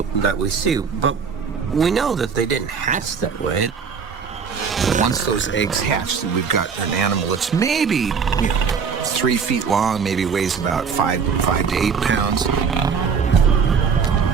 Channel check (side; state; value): left; quieter; 6.1 dB